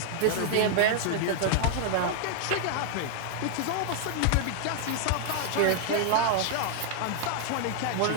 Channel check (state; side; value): different; both; correlation 0.00